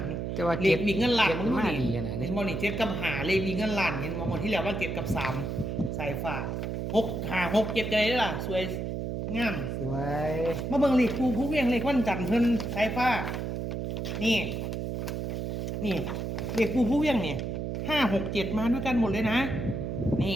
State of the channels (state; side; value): noise; right; hum, 3 dB below the sound